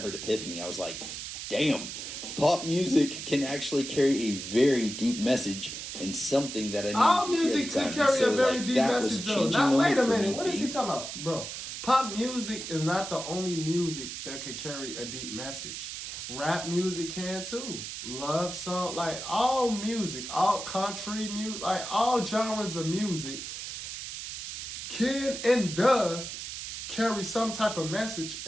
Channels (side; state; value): right; noise; hiss, 7 dB below the sound